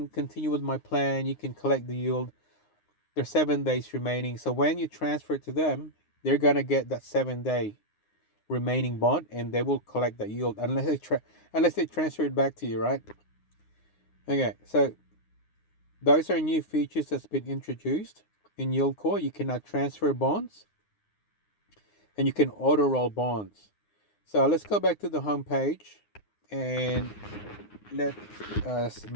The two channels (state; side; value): late; right; 9.6 ms